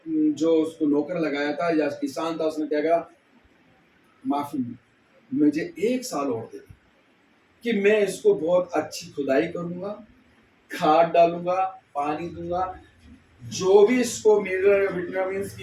जो उसको नौकर लगाया था या किसान था, उसने क्या कहा, माफी, मुझे 1 साल और दे कि मैं इसको बहुत अच्छी खुदाई करूंगा, खाद डालूंगा, पानी दूंगा, जो भी इसको विटामिन्स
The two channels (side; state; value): both; identical; correlation 1.00